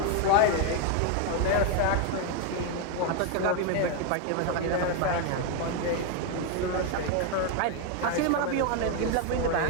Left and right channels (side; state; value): both; different; correlation 0.01